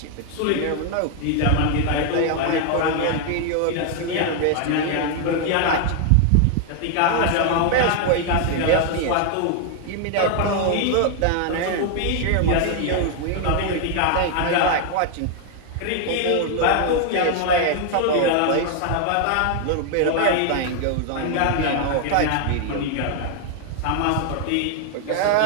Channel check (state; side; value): different; both; correlation 0.00